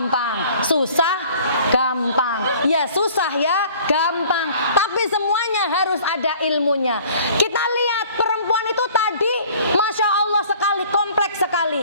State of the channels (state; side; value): inverted; both; correlation -0.51